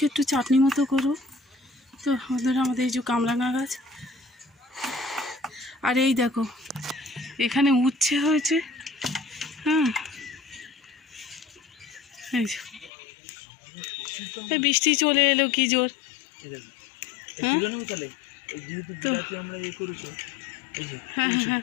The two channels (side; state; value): right; drops out; at 12.9 s